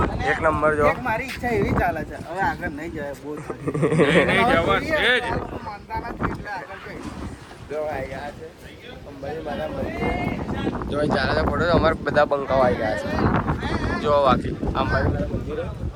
એક નંબર. જો છે. મારી ઈચ્છા એવી ચાલે છે હવે આગળ નહીં જાય. બહુ માનતા નથી એટલે આગળ જઈ. જો આવી ગયા છે અંબાજી માતા મંદિર. જો ચાલે છે ફોટો. અમારે બધા બંકાઓ આવી ગયા છે. જો બાકી અંબાજી માતા મંદિર.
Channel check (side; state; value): both; identical; correlation 1.00